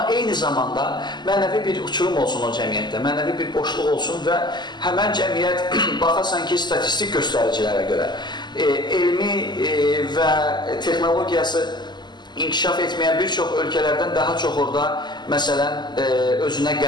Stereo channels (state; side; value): late; right; 0.21 ms